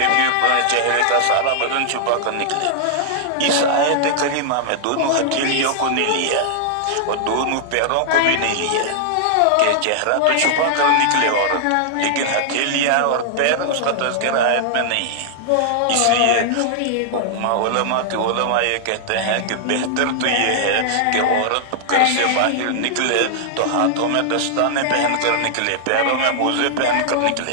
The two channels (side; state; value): both; different; correlation -0.01